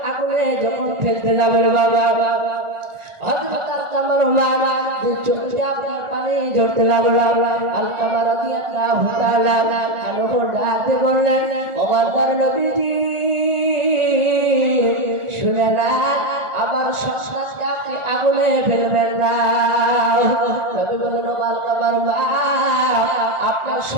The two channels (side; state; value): left; late; 1.4 ms